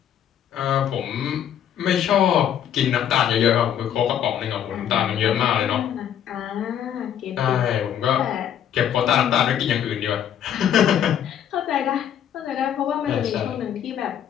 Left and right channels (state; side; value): quieter; right; 9.7 dB